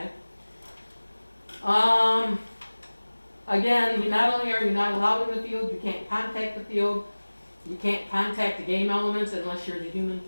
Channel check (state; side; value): inverted; both; correlation -1.00